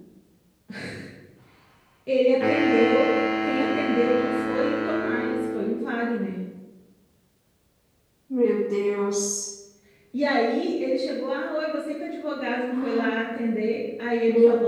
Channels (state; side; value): identical; both; correlation 1.00